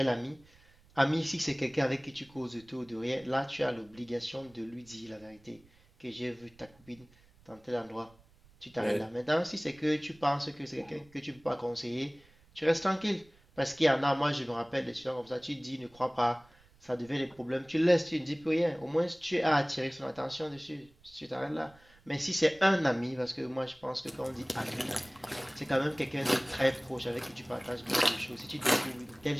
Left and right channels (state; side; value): noise; right; rumble, 28 dB below the sound